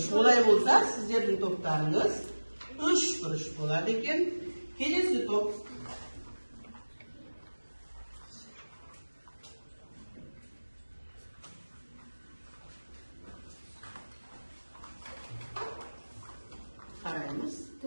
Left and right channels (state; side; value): inverted; both; correlation -1.00